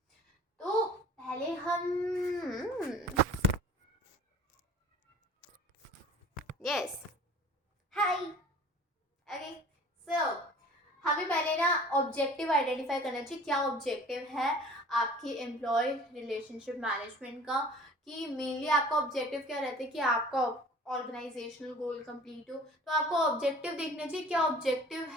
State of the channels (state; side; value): normal; both; correlation 0.47